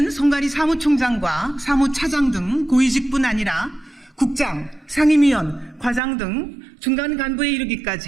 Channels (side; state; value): left; drops out; at 6.0 s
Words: 선관위 사무총장과 사무차장 등 고위직뿐 아니라 국장, 상임위원, 과장 등 중간 간부에